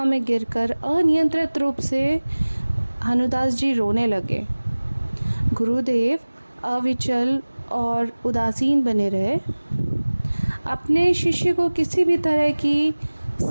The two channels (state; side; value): inverted; both; correlation -1.00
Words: में गिरकर अनियंत्रित रूप से हनुदास जी रोने लगे। गुरुदेव अविचल और उदासीन बने रहे। अपने शिष्य को किसी भी तरह की